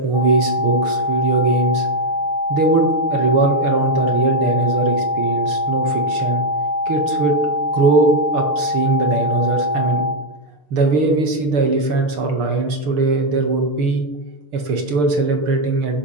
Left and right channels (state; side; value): late; left; 6.8 ms